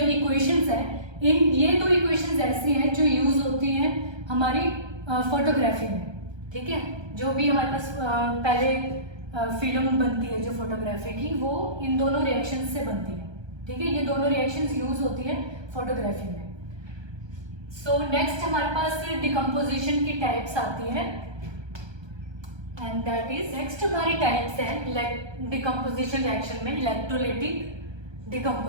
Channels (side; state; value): left; late; 1.3 ms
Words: हैं, ये 2 इक्वेशंस ऐसी हैं जो यूज होती हैं हमारी फोटोग्राफी में, ठीक है। जो भी हमारे पास पहले फिल्म बनती है जो फोटोग्राफी की, वो इन दोनों रिएक्शंस से बनती है, ठीक है। ये दोनों रिएक्शंस यूज होती है फोटोग्राफी में। सो नेक्स्ट हमारे पास डिकम्पोजिशन की टाइप्स आती है, एंड दैट इज नेक्स्ट हमारी टाइप्स है डिकम्पोजिशन रिएक्शन में इलेक्ट्रोलाइटिक